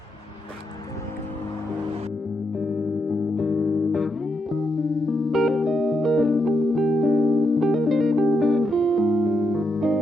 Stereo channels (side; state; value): both; normal; correlation 0.81